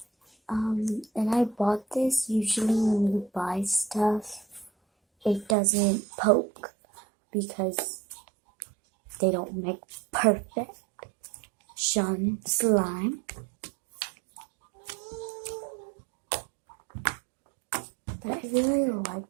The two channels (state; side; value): drops out; left; at 5.6 s